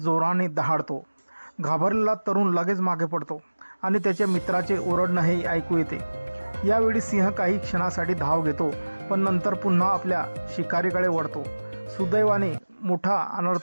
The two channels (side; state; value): both; inverted; correlation -1.00